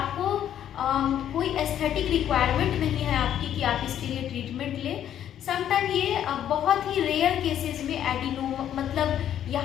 कोई एस्थेटिक रिक्वायरमेंट नहीं है आपकी कि आप इसके लिए ट्रीटमेंट लें। समटाइम ये बहुत ही रेयर केसेस में एडिनोमा मतलब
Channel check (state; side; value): quieter; right; 10.4 dB